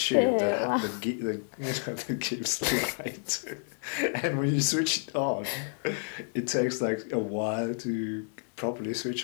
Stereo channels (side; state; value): right; silent; 58 dB below the other